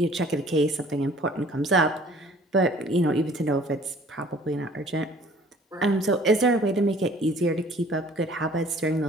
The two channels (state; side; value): normal; both; correlation 0.53